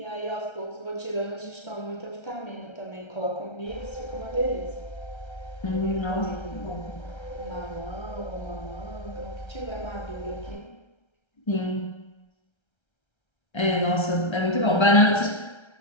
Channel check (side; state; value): right; late; 1.3 ms